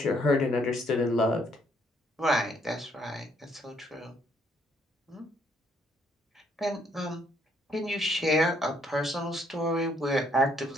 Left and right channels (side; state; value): both; normal; correlation 0.69